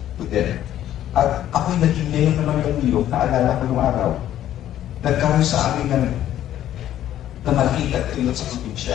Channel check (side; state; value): right; quieter; 12.0 dB